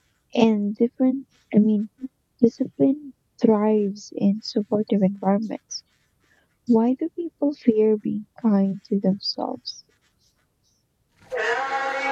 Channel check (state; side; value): identical; both; correlation 1.00